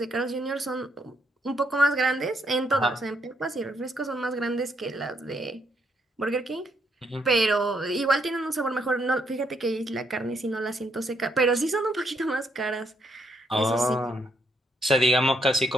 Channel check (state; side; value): normal; both; correlation 0.75